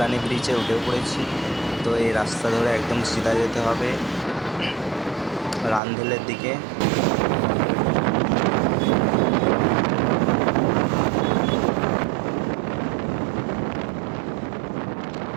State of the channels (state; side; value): drops out; left; at 5.8 s